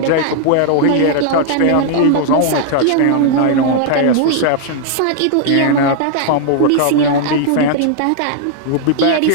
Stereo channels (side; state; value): both; different; correlation -0.01